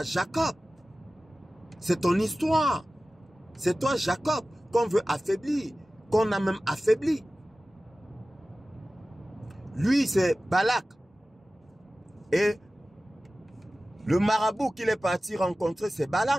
Jacob. C'est ton histoire. C'est toi, Jacob, qu'on veut affaiblir, qu'on a même affaibli. Lui, c'est Balak. Et le marabout qu'il est parti rencontrer, c'est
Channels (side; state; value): both; normal; correlation 0.96